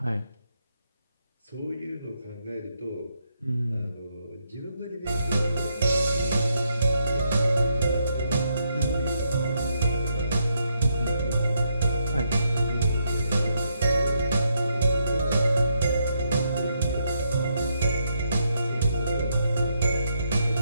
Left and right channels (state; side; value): inverted; both; correlation -0.78